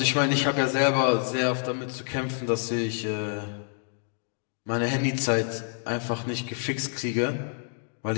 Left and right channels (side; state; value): right; silent; 60 dB below the other